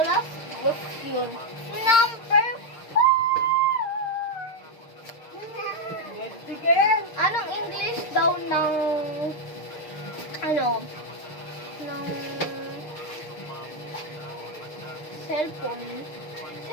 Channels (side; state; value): right; late; 6.6 ms